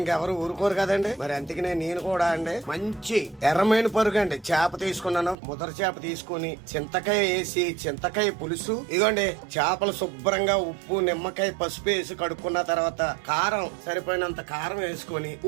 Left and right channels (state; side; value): drops out; left; at 5.4 s